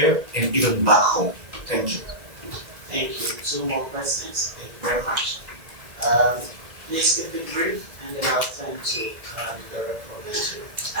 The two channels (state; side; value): late; left; 1.9 ms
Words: and even back home? Thank you. Thank you. Two more questions. Thank you very much. Please keep it brief, and then I'll turn to the director of the issue.